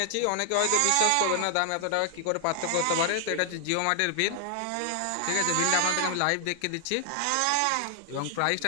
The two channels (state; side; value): different; both; correlation 0.00